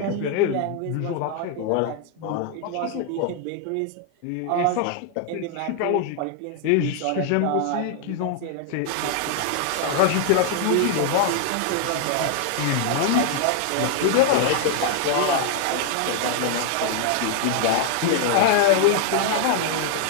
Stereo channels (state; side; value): different; both; correlation 0.00